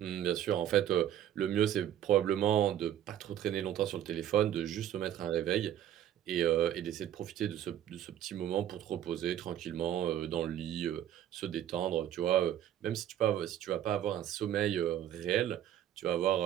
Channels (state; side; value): quieter; left; 11.1 dB